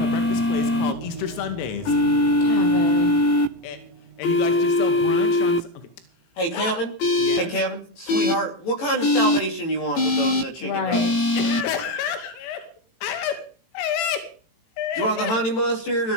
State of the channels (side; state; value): right; late; 18 ms